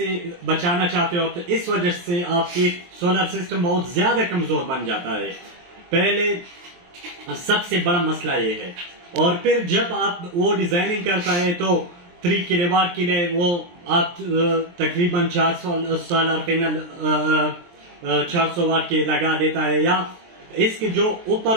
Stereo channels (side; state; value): left; late; 23 ms